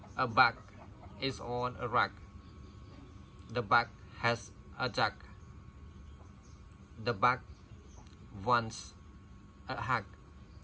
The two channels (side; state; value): both; identical; correlation 1.00